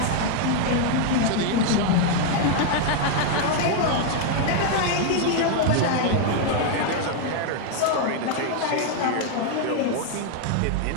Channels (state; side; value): different; both; correlation 0.00